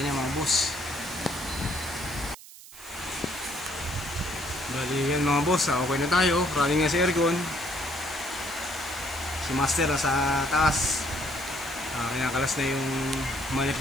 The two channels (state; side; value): noise; right; hiss, 18 dB below the sound